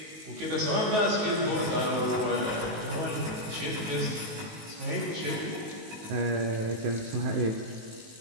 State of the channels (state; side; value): late; left; 19 ms